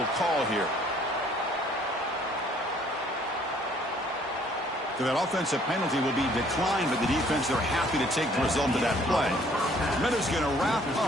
call here. So that offensive penalty will be declined by the defense. They're happy to take the result of that play. Meadows going to wrap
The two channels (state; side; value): normal; both; correlation 0.60